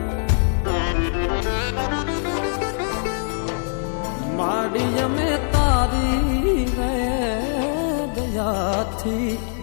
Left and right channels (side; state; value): right; silent; 62 dB below the other